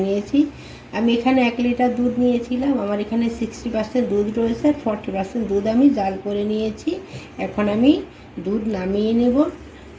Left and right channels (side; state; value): both; identical; correlation 1.00